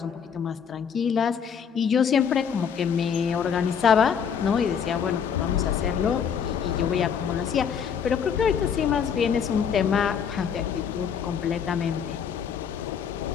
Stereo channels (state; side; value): quieter; right; 7.3 dB